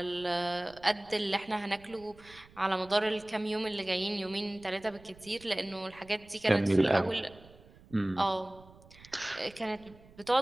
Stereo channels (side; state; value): right; noise; rumble, 23 dB below the sound